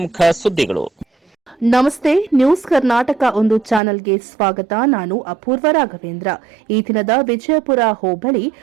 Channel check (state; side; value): drops out; left; at 3.8 s